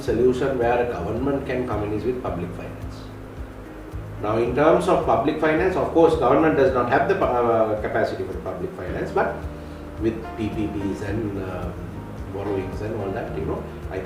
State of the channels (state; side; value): identical; both; correlation 1.00